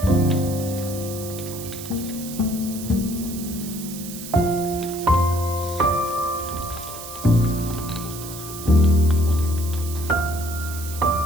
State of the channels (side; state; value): right; noise; hiss, 11 dB below the sound